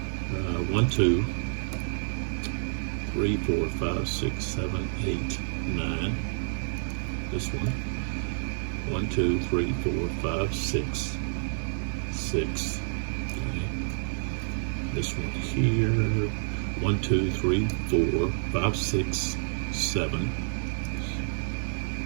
1, 2, 3, 4, 5, 6, 7, 8, 9. This one. 1, 2, 3, 4, 5, 6. 6. Okay. This one here. 1, 2, 3, 4, 5, 6, 7.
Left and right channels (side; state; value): left; silent; 56 dB below the other